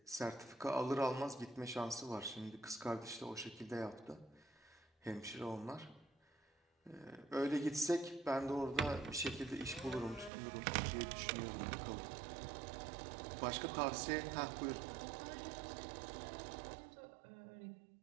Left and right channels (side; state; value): left; drops out; at 10.3 s